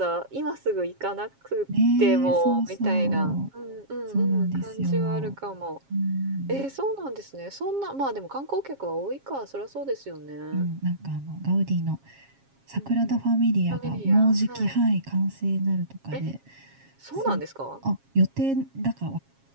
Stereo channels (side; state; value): left; late; 7.4 ms